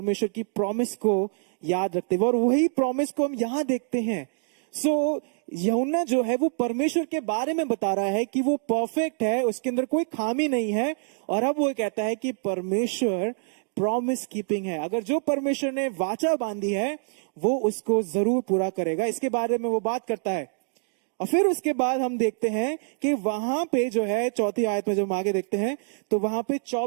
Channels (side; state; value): left; silent; digital silence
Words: की प्रॉमिस को याद रखते हुए। और वही प्रॉमिस को हम यहां देखते हैं। सो यूहन्ना जो है वो परमेश्वर के बारे में बता रहा है कि वो परफेक्ट है, उसके अंदर कोई खामी नहीं है। और अब वो कहता है कि परमेश्वर प्रॉमिस कीपिंग है। अगर जो परमेश्वर ने वाचा बांधी है वो उसको जरूर पूरा करेगा। इसके बारे में वो बात करता है। और फिर उसके बाद हम देखते हैं कि वहां पे जो है चौथी आयत में जब हम आगे देखते हैं तो वहां पे